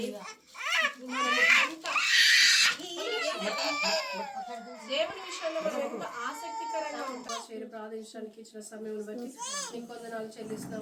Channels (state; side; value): identical; both; correlation 1.00